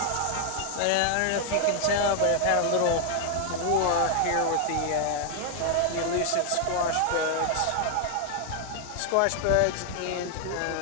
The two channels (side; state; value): both; different; correlation 0.00